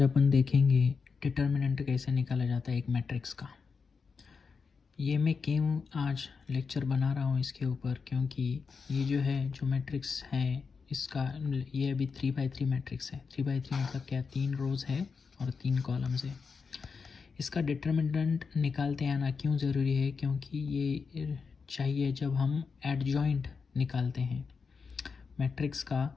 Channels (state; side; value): quieter; right; 5.2 dB